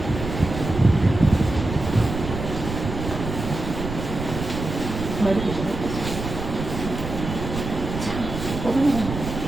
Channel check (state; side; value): noise; right; rumble, 6 dB below the sound